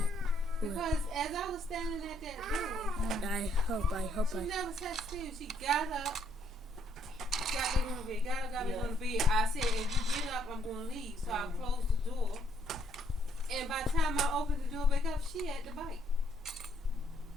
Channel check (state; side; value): normal; both; correlation 0.69